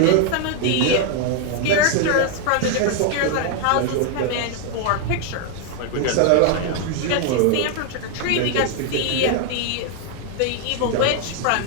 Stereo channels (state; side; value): different; both; correlation 0.01